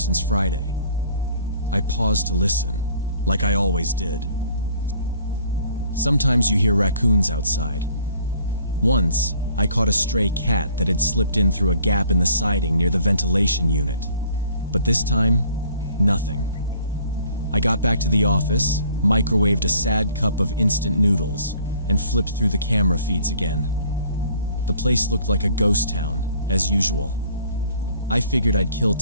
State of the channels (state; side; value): inverted; both; correlation -0.57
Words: Friday. I paused to listen, like I always did. Sometimes you hear raccoons outside. Once, I caught a stray cat that had slipped in through a gap in the siding near the ventilation unit. But this time, nothing. I got back to the office, microwaved a sad cup of instant noodles, and flipped through the camera feeds again. The place looked like a ghost town, as usual. I figured I'd kill